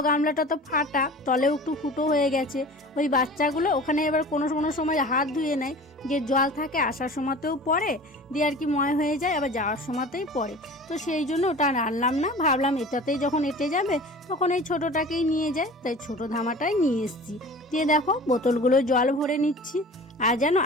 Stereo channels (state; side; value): normal; both; correlation 0.40